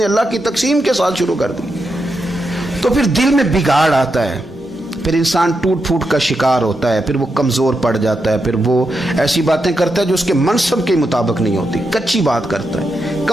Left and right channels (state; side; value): normal; both; correlation 0.85